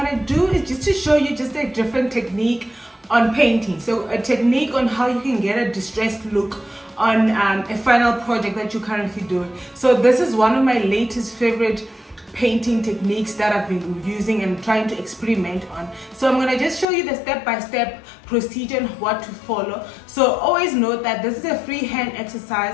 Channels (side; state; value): right; drops out; at 16.9 s